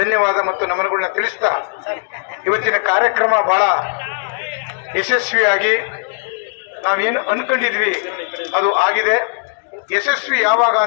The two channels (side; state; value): right; silent; digital silence